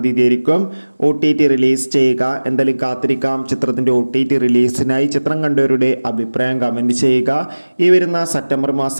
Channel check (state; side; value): inverted; both; correlation -1.00